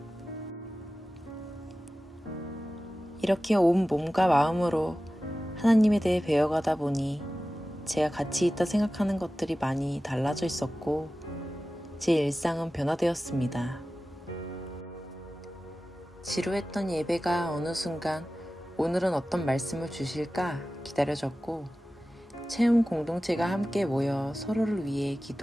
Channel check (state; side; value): normal; both; correlation 0.95